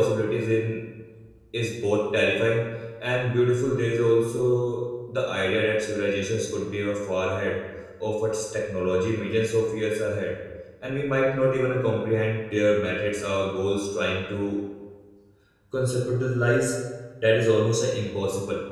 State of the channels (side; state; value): both; identical; correlation 1.00